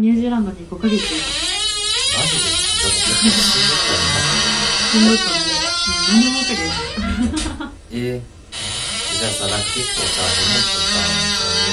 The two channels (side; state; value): both; identical; correlation 1.00